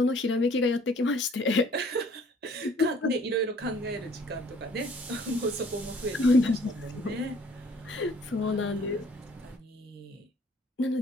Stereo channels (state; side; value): normal; both; correlation 0.56